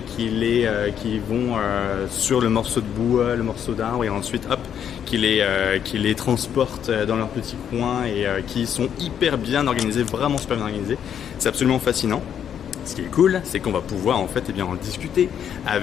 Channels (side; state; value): right; quieter; 8.9 dB